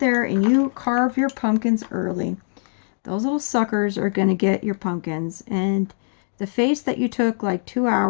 and you carve your pumpkins early, those little suckers are going to get your pumpkins. And the face that you took like 2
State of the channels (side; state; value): right; silent; 64 dB below the other